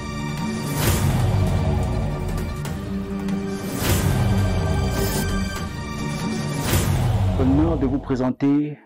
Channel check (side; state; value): both; identical; correlation 1.00